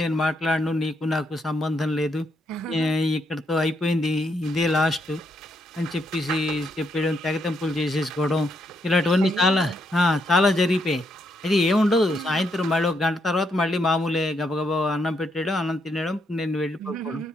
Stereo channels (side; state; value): both; normal; correlation 0.77